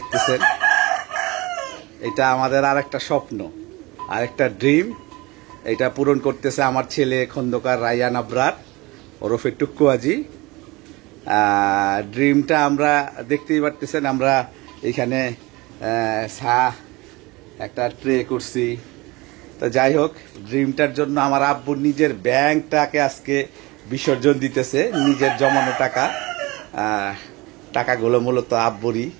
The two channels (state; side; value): quieter; left; 22.9 dB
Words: এটা আমাদের আরেকটা স্বপ্ন, আরেকটা ড্রিম। এটা পূরণ করতেছে আমার ছেলে খন্দকার রায়হান আবরার ওরফে টুক্কু হাজি। ড্রিমটা আমরা দেখতেই পারতেছেন, আমরা এখানে একটা ট্রে করছি। তো যাই হোক, ড্রিমটার জন্য আমার আব্বুর নিজের ব্যাংকটাকে আজকে বিসর্জন দিতেছে, নিজের জমানো টাকা। টাকাগুলো মূলত আব্বুরই,